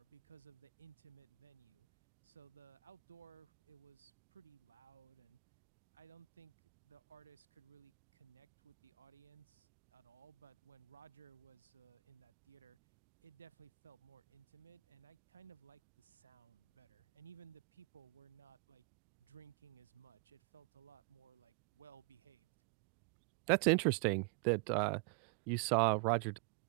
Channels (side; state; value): left; quieter; 28.9 dB